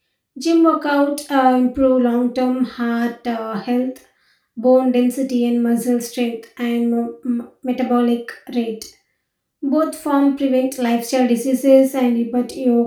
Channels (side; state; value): both; identical; correlation 1.00